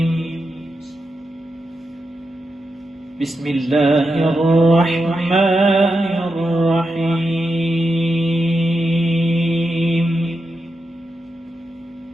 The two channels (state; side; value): normal; both; correlation 0.87